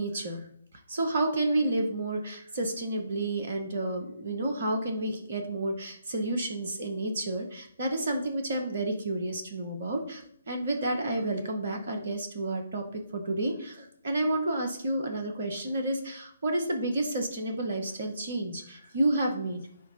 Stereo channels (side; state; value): both; inverted; correlation -0.75